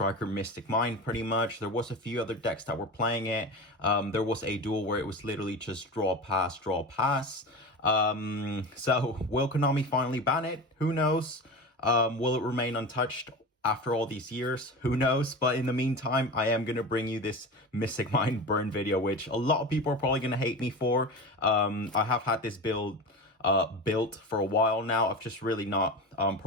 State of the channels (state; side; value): normal; both; correlation 0.28